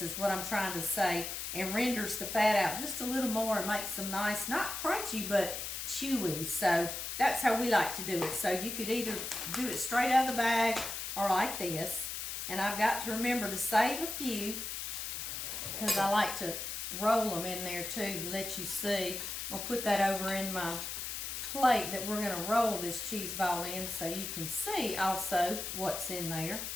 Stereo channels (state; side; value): noise; left; hiss, 5 dB below the sound